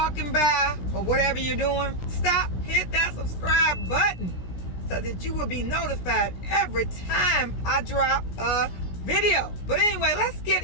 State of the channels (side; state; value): right; late; 16 ms